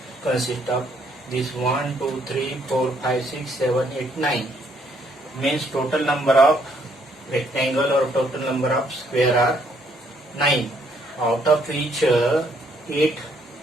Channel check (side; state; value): both; normal; correlation 0.69